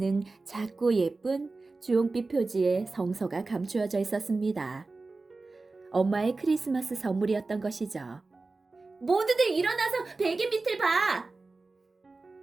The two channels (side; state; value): left; quieter; 3.6 dB